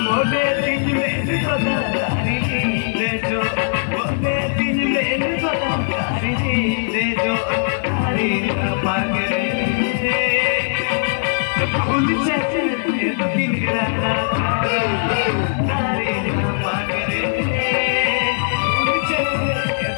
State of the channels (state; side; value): silent; right; 66 dB below the other